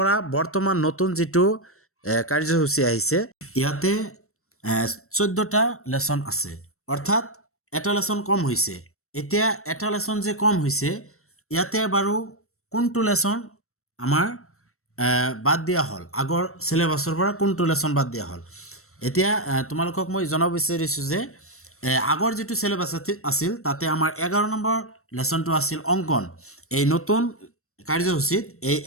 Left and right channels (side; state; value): right; late; 0.63 ms